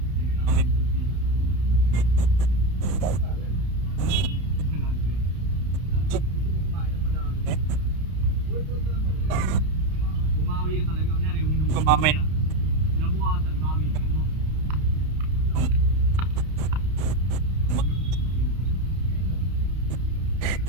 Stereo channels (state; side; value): late; left; 31 ms